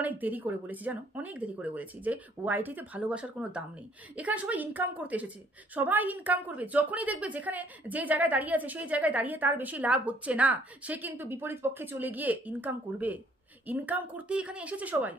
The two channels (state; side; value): normal; both; correlation 0.62